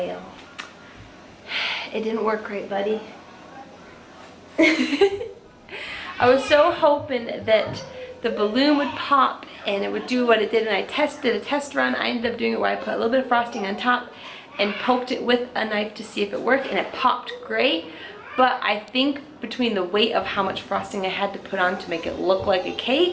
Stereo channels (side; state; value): both; identical; correlation 1.00